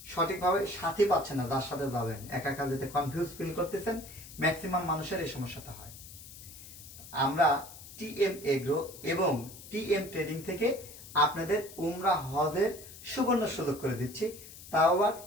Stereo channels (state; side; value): noise; left; hiss, 16 dB below the sound